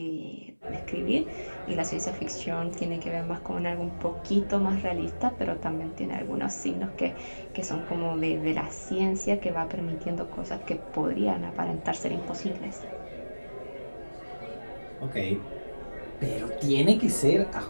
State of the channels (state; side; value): inverted; both; correlation -1.00